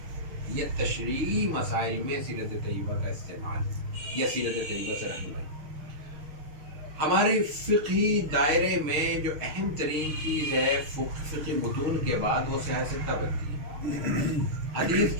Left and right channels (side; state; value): left; late; 6.5 ms